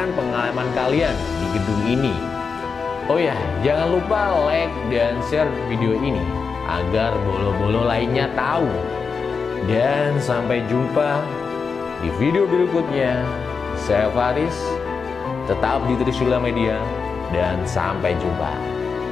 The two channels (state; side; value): quieter; right; 5.3 dB